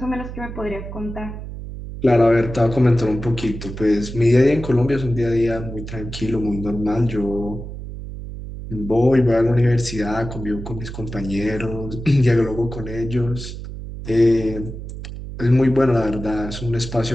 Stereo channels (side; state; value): right; noise; hum, 10 dB below the sound